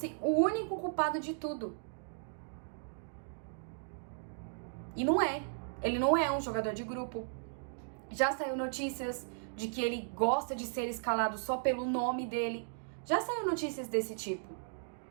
o único culpado de tudo. E não é. Ele não é um jogador de grupo. Já saiu notícias de que ele gosta de ser escalado só pelo nome dele. Já saiu notícias desse tipo.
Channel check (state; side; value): silent; left; digital silence